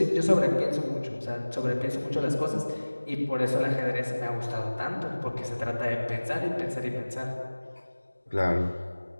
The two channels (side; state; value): both; inverted; correlation -1.00